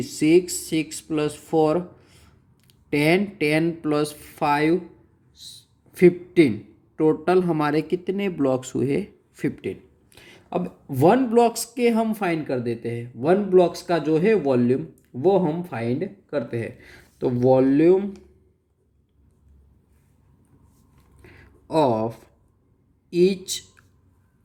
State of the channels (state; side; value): identical; both; correlation 1.00